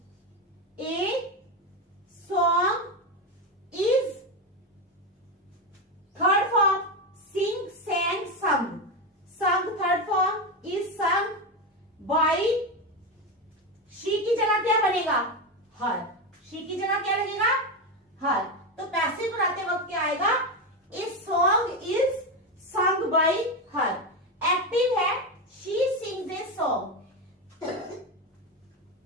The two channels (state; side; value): normal; both; correlation 0.14